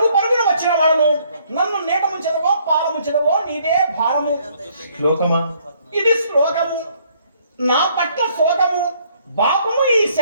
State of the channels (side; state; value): both; inverted; correlation -0.65